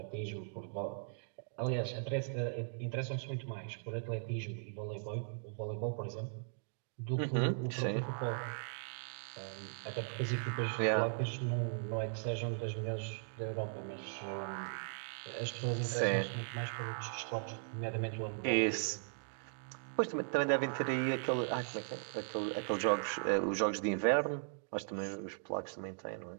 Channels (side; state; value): left; silent; digital silence